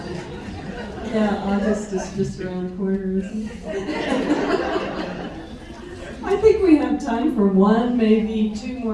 Yeah, August is just around the corner, isn't it? I think we have time for one, maybe 2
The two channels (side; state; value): both; identical; correlation 1.00